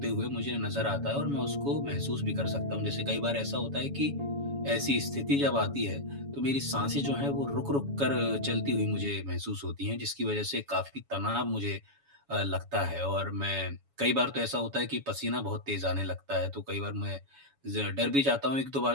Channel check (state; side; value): late; left; 7.1 ms